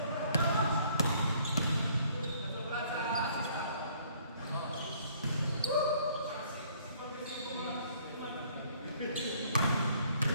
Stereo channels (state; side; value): inverted; both; correlation -0.61